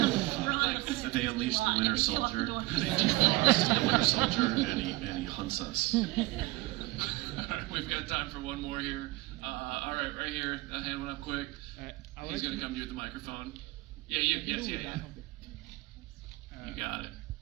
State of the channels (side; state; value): left; quieter; 21.3 dB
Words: unleash the Winter Soldier. They defrost the Winter Soldier, and he hunts us. We've got time for one more here. All right, right here. That hand went up quick. He's going to come to you with the microphone. Yeah, you. Yes, yeah. You got it.